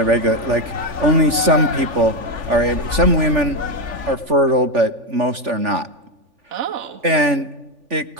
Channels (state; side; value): late; left; 3.4 ms